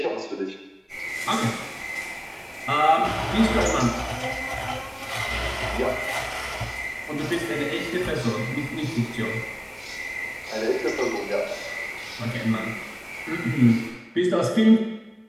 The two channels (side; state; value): both; identical; correlation 1.00